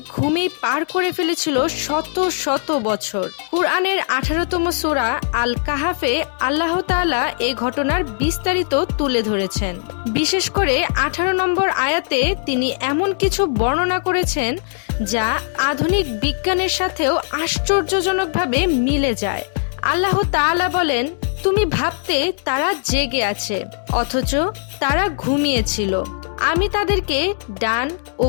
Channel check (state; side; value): silent; right; digital silence